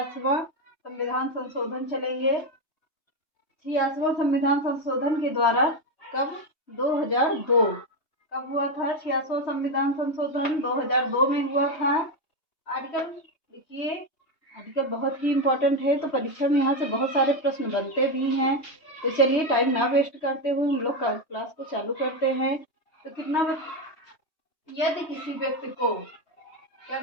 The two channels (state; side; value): late; right; 3.2 ms